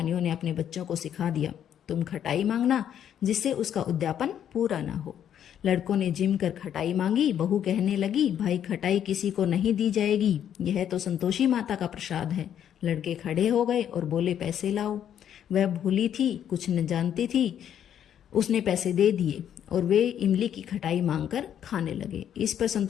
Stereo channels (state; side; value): quieter; right; 9.7 dB